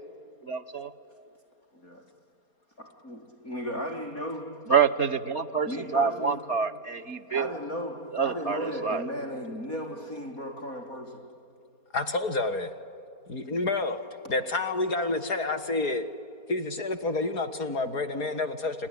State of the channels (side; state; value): right; late; 4.3 ms